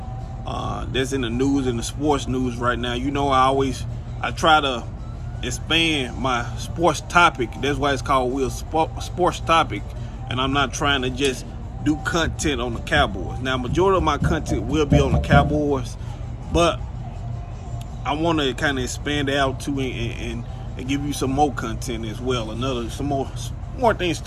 that's in the news, in the sports news right now. I try to expand my sports topic. That's why it's called Will's Sports Topic, and I'm not trying to just do content on the Cowboys. Now, majority of my content will be on the Cowboys, but I want to kind of expand it out too and give you some more content as well. Some more things to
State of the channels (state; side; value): identical; both; correlation 1.00